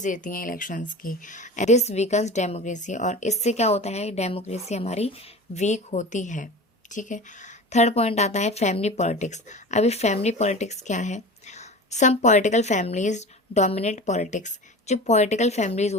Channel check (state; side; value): normal; both; correlation 0.34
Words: देती हैं इलेक्शंस की. This weakens democracy. और इससे क्या होता है? डेमोक्रेसी हमारी वीक होती है. ठीक है. थर्ड पॉइंट आता है फैमिली पॉलिटिक्स. अभी फैमिली पॉलिटिक्स क्या है? Some political families dominate politics. जो पॉलिटिकल फैमिलीज